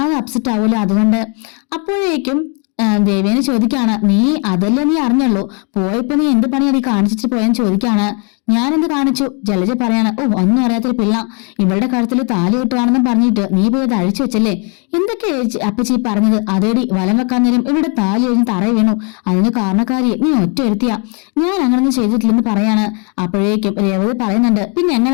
അപ്സെറ്റ് ആവൂല, അതുകൊണ്ട്. അപ്പോഴേക്കും ദേവേനെ ചോദിക്കാണ്, നീ അതല്ലേ നീ അറിഞ്ഞുള്ളൂ, പോയപ്പോ നീ എന്ത് പണിയാ നീ കാണിച്ചിട്ട് പോയെന്ന് ചോദിക്കാണ്. ഞാനെന്ത് കാണിച്ചു? ജലജ പറയാണ്, ഓ ഒന്നും അറിയാത്തൊരു പിള്ള, ഇവളുടെ കഴുത്തിൽ താലി കിട്ടുവാണെന്നും പറഞ്ഞിട്ട് നീ പോയി അത് അഴിച്ചു വെച്ചല്ലേ? എന്തൊക്കെ അപ്പച്ചി പറഞ്ഞത്? അതേടി വലം വെക്കാൻ നേരം ഇവിടെ താലി കഴിഞ്ഞ് തറയി വീണു, അതിന് കാരണക്കാരി നീ ഒറ്റ എടുത്തിയാ, ഞാൻ അങ്ങനൊന്നും ചെയ്തിട്ടില്ലെന്ന് പറയാണ്. അപ്പോഴേക്കും രേവതി പറയുന്നുണ്ട്, പിന്നെ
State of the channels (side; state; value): right; quieter; 36.4 dB